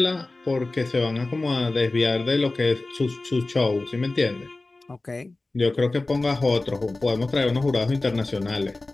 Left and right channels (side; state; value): right; quieter; 3.1 dB